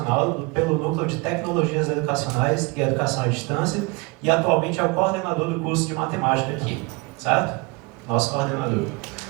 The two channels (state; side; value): quieter; left; 26.9 dB